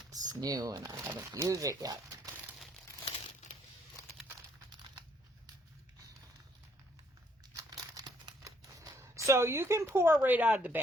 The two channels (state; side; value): normal; both; correlation 0.67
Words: new and I haven't used it yet. So you can pour right out of the